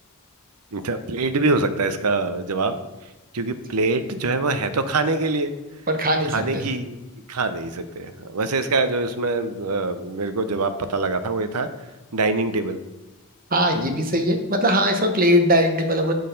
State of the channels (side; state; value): both; normal; correlation -0.09